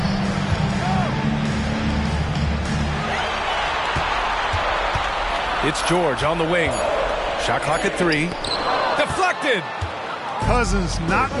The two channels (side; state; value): both; identical; correlation 1.00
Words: It's George on the wing. Shot clock at 3. Deflected. Cousins not